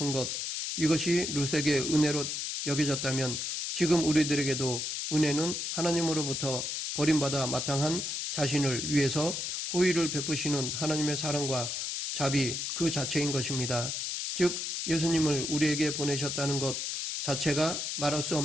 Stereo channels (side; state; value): left; noise; hiss, 3 dB below the sound